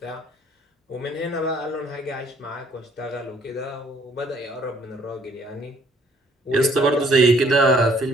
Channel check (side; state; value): both; normal; correlation 0.62